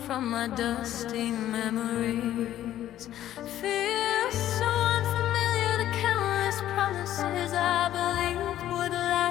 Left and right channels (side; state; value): right; quieter; 12.5 dB